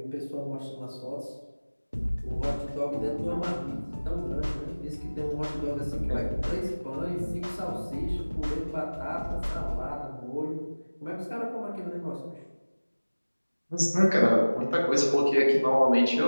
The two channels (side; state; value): both; inverted; correlation -1.00